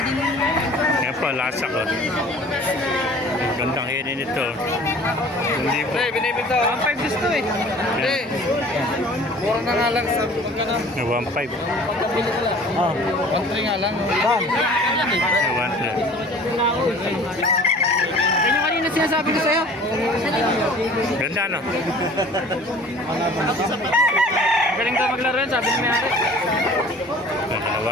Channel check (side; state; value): both; normal; correlation 0.47